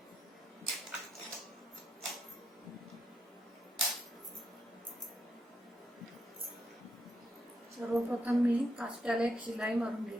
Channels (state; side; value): normal; both; correlation 0.81